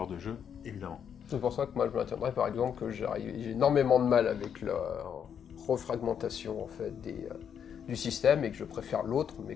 de jeu, évidemment. C'est pour ça que moi je maintiendrais par exemple que j'ai énormément de mal avec la refragmentation en fait du système et que je préfère l'autre, mais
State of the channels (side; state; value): right; quieter; 8.1 dB